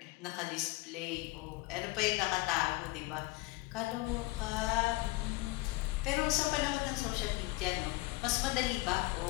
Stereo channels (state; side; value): quieter; right; 21.0 dB